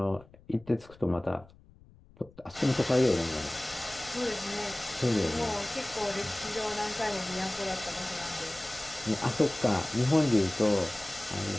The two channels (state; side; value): noise; left; rumble, 24 dB below the sound